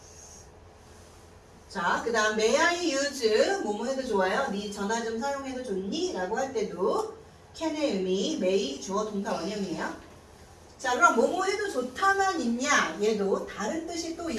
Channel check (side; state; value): both; identical; correlation 1.00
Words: 자, 그 다음 may I use 뭐뭐 해도 좋아요. 네 전화 좀 사용해도 좋니? 라고 할 때도 can의 의미 may 주어 동사 원형이에요. 자, 그럼 뭐뭐 해도 좋다만 있냐? 얘도 다른 뜻이 또